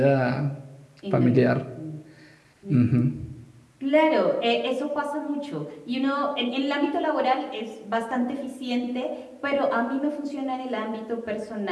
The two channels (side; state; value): both; identical; correlation 1.00